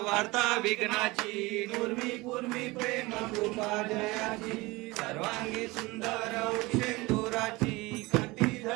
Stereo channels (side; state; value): left; quieter; 22.4 dB